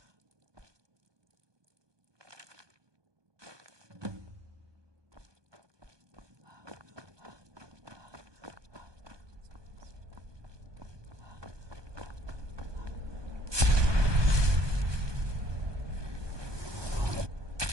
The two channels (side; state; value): left; late; 1.2 ms